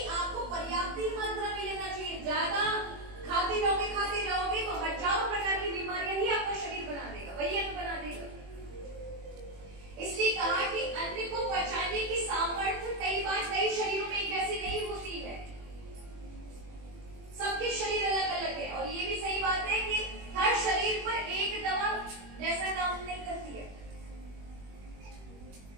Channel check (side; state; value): left; late; 21 ms